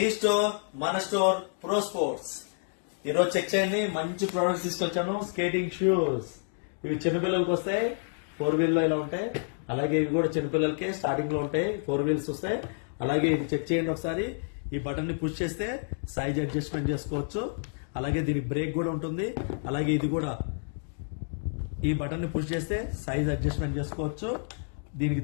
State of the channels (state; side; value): silent; right; digital silence